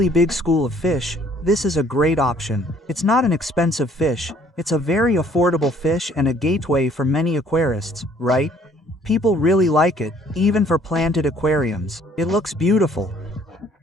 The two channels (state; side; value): normal; both; correlation 0.59